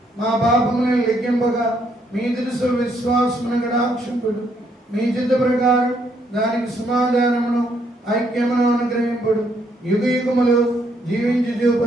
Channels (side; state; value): both; normal; correlation 0.72